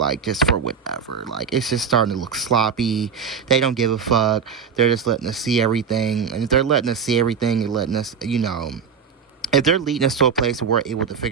just for whatever. Like, it's just starting to look sloppy. They don't give a fuck. They're just letting us see everything, and if they're letting us see everything and letting us, if they're leading us to a place where we're able to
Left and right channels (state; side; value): quieter; left; 6.6 dB